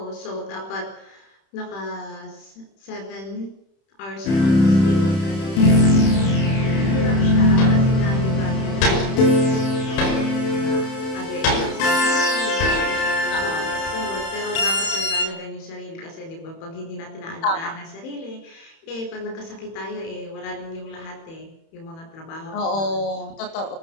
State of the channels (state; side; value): late; right; 31 ms